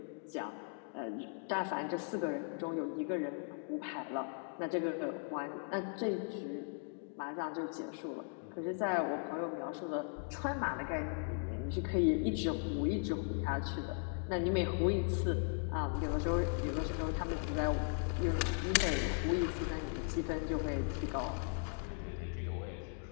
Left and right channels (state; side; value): silent; right; 53 dB below the other